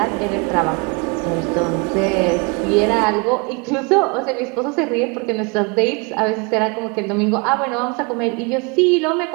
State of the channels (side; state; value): left; quieter; 30.6 dB